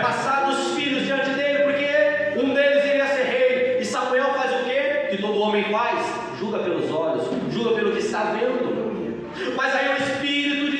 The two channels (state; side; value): identical; both; correlation 1.00